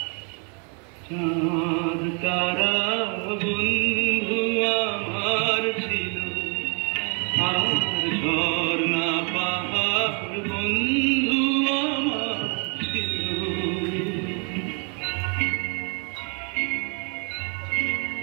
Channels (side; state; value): left; quieter; 36.9 dB